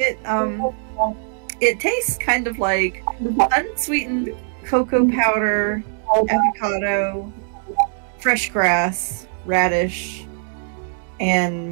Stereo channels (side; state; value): left; silent; 65 dB below the other